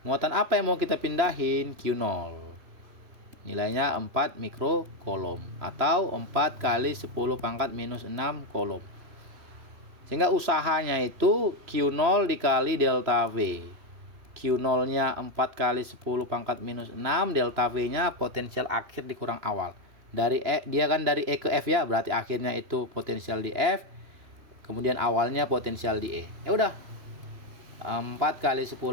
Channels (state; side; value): late; left; 3.0 ms